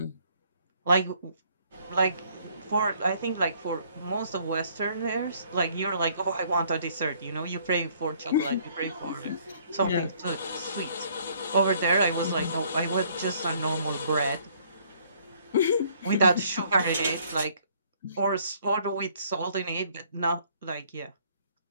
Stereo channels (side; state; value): both; inverted; correlation -0.62